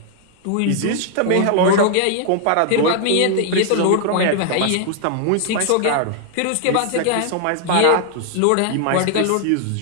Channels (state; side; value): different; both; correlation 0.00